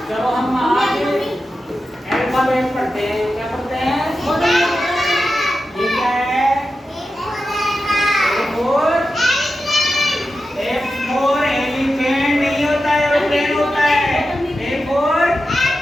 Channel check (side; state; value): both; normal; correlation 0.91